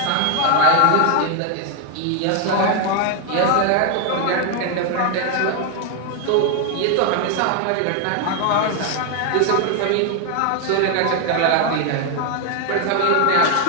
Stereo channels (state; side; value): different; both; correlation 0.01